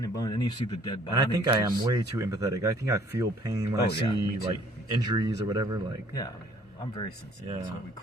and bone, and then you see the dead bodies. And I think I am way too empathetic. I think I feel pain when I see like injuries or whatever. Like, yeah, I mean, I'm very sensitive. Yeah. That's why we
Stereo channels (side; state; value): both; normal; correlation 0.59